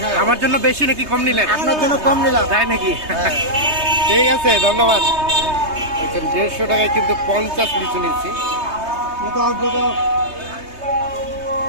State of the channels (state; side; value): late; left; 3.2 ms